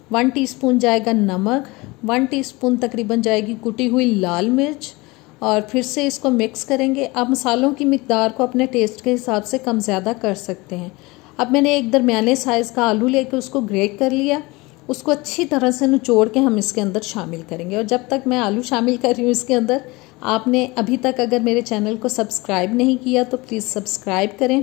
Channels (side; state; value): right; quieter; 23.3 dB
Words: 1 टीस्पून जाएगा नमक, 1 टीस्पून तकरीबन जाएगी कुटी हुई लाल मिर्च। और फिर से इसको मिक्स करेंगे। आप मसालों की मिकदार को अपने टेस्ट के हिसाब से कम ज़्यादा कर सकते हैं। अब मैंने एक दरमियाने साइज़ का आलू लेके उसको ग्रेट कर लिया। उसको अच्छी तरह से निचोड़ के हम इसके अंदर शामिल करेंगे। और जब तक मैं आलू शामिल कर रही हूँ इसके अंदर, आपने अभी तक अगर मेरे चैनल को सब्सक्राइब नहीं किया तो प्लीज़ सब्सक्राइब